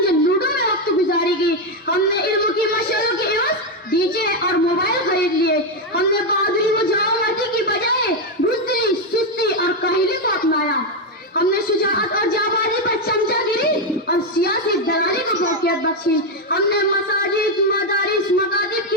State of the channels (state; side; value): normal; both; correlation 0.06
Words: لوڈو میں وقت گزاری کی. ہم نے علم کی مشعلوں کے عوض ڈی جے اور موبائل خرید لیے. ہم نے بہادری و جوانمردی کی بجائے بزدلی، سستی اور کاہلی کو اپنایا. ہم نے شجاعت اور جانبازی پر چمچا گیری اور سیاسی دلالی کو فوقیت بخشی. ہم نے مساجد، مدارس، مکاتب